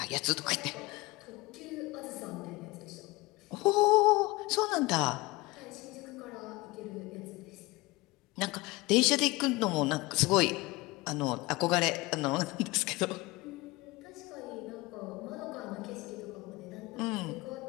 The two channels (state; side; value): quieter; right; 22.0 dB